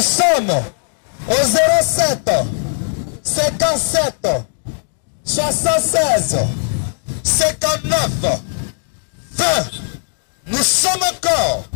sommes au 07 57 76 59 20. Nous sommes encore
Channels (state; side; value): silent; right; digital silence